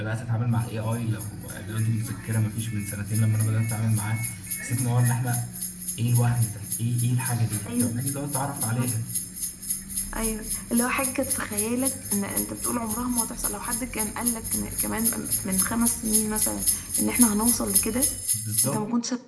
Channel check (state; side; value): identical; both; correlation 1.00